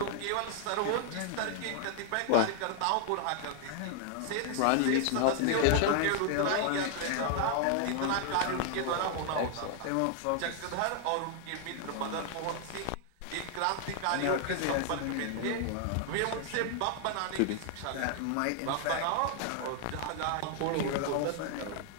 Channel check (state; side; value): different; both; correlation 0.00